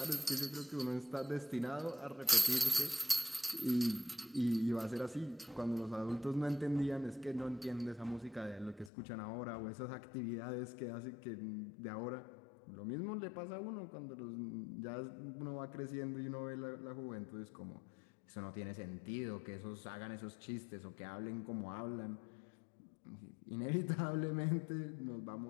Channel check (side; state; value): right; drops out; at 8.9 s